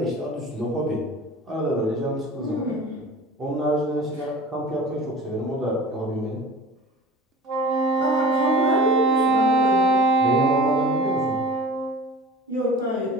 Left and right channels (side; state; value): both; normal; correlation 0.39